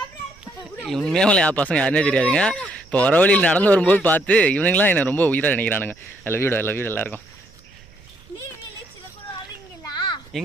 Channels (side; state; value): right; noise; rumble, 26 dB below the sound